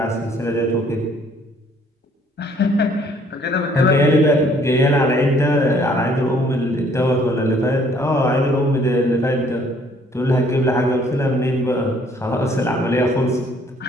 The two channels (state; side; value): normal; both; correlation 0.61